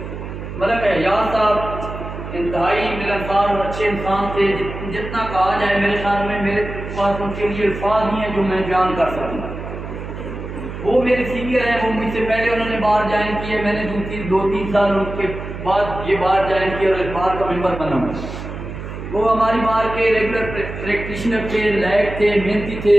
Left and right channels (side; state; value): right; noise; hum, 9 dB below the sound